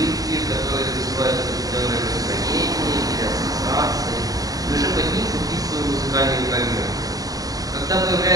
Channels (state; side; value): late; left; 0.18 ms